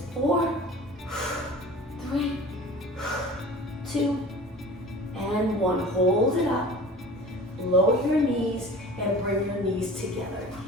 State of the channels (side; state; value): both; normal; correlation 0.41